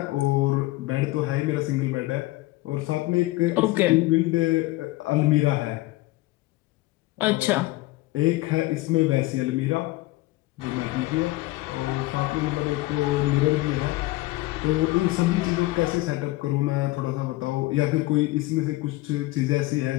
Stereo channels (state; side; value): quieter; right; 19.2 dB